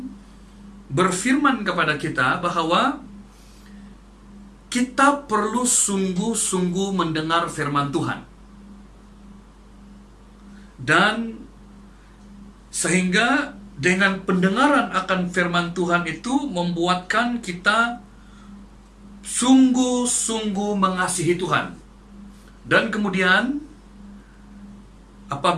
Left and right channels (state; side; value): identical; both; correlation 1.00